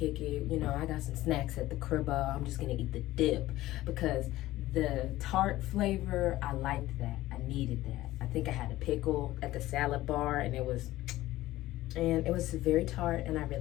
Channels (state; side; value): quieter; right; 16.3 dB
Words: it. You know, I got some snacks at the crib. I'm just gonna eat the dip because the tart flavor, I liked that. I needed that. I think I had a pickle at the salad bar, and it was very tart, and I